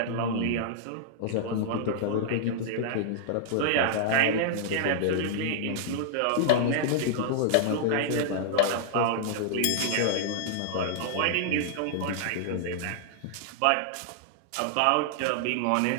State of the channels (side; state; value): both; different; correlation -0.01